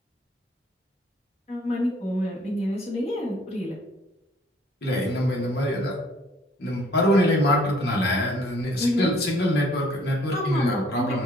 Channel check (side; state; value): both; normal; correlation 0.60